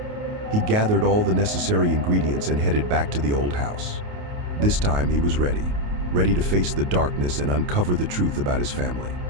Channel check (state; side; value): late; left; 28 ms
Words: He gathered all the necessary ingredients and headed back to the old house. This time he was ready to face the darkness and uncover the truth about his family.